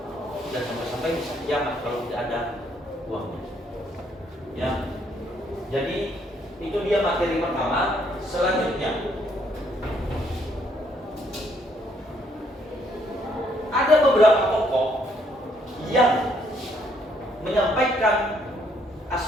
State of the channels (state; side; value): normal; both; correlation 0.69